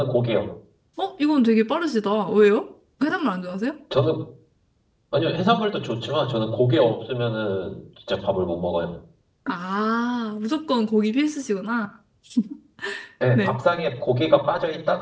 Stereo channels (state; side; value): identical; both; correlation 1.00